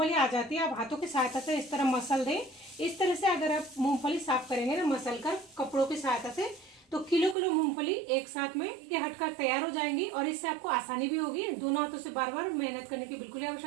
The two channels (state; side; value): drops out; left; at 7.4 s